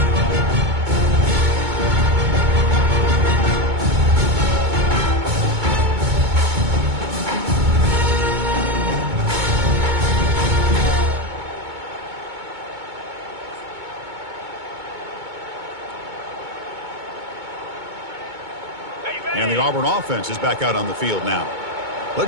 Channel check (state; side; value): late; left; 2.2 ms